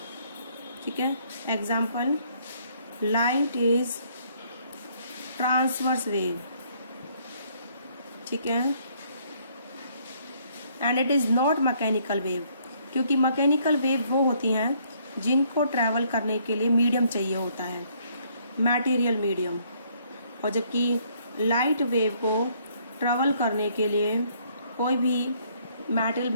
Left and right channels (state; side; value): inverted; both; correlation -0.66